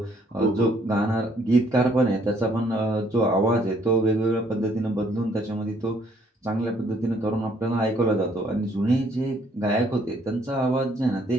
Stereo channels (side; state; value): both; normal; correlation 0.65